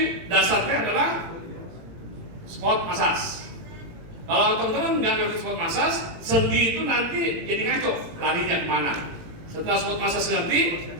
dasarnya adalah squat massage. Kalau teman-teman nggak ngerti squat massage, sendi itu nanti jadi ngaco, larinya kemana. Setelah squat massage ngerti,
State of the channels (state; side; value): late; left; 18 ms